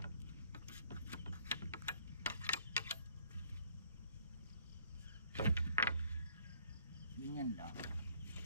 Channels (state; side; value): inverted; both; correlation -0.61